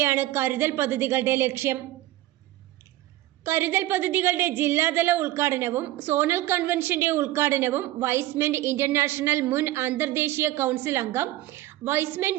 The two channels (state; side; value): quieter; left; 15.9 dB